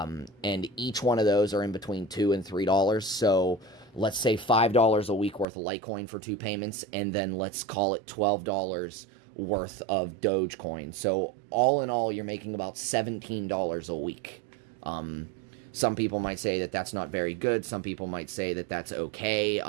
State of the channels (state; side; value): drops out; left; at 5.5 s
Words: each one of those are in between $2 and $3. So let's say $5 a week worth of Litecoin for 2 payments, and then let's call it $12 worth of Dogecoin. So all in all, you're making about $17 a week. Some people might say that that's not very good. Some people might say that that's okay.